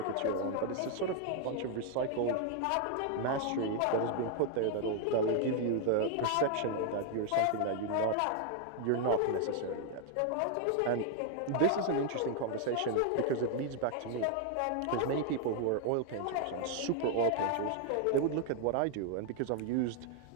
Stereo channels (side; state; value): both; different; correlation 0.00